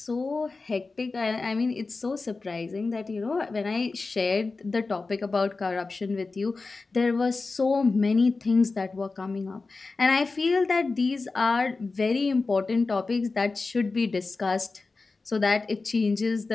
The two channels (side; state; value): right; quieter; 3.9 dB